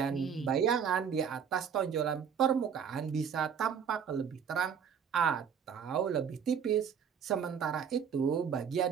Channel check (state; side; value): quieter; left; 7.4 dB